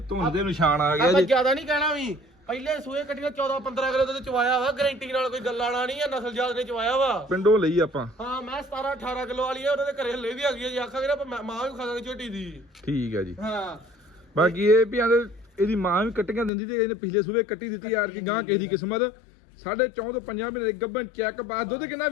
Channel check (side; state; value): right; drops out; at 16.5 s